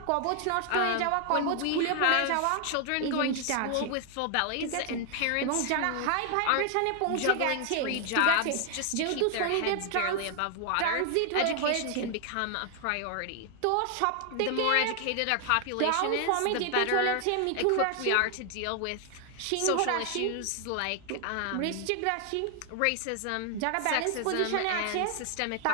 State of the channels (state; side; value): different; both; correlation 0.00